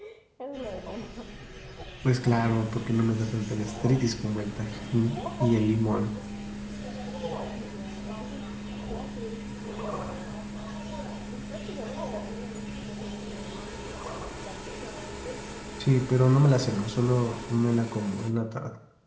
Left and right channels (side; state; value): both; identical; correlation 1.00